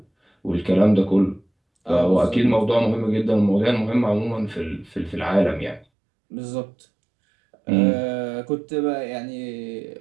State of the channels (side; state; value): left; drops out; at 5.9 s